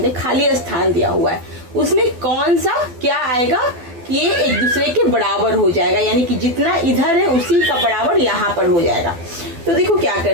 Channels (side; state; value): left; late; 12 ms